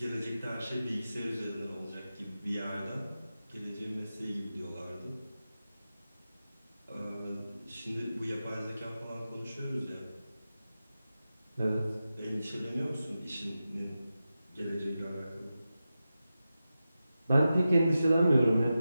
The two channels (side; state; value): both; inverted; correlation -0.92